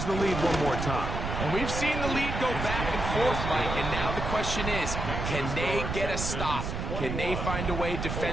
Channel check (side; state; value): right; noise; rumble, 3 dB below the sound